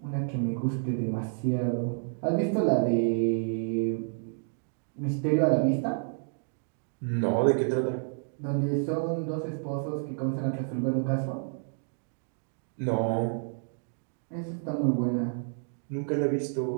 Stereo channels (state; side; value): silent; left; digital silence